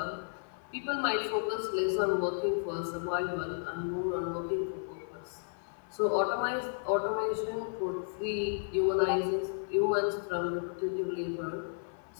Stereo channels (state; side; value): silent; right; 56 dB below the other